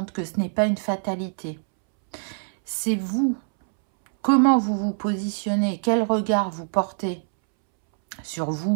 que ce n'est pas une fatalité. C'est vous, comment vous vous positionnez, quel regard vous portez sur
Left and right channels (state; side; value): silent; left; 63 dB below the other